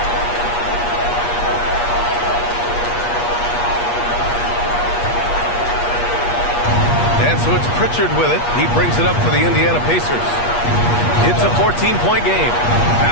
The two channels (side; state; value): right; late; 8.4 ms